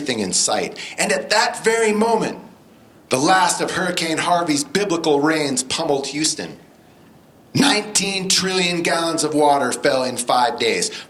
in sight. And at that very moment, the last of Hurricane Harvey's biblical rains pummeled Houston. 19 trillion gallons of water fell in 5 days,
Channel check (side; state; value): both; identical; correlation 1.00